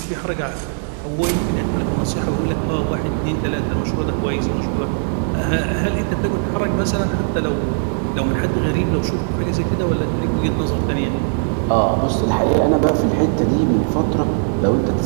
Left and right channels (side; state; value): left; silent; 66 dB below the other